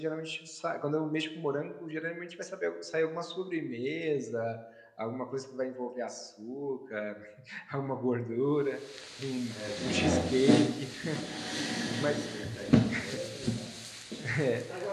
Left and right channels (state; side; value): identical; both; correlation 1.00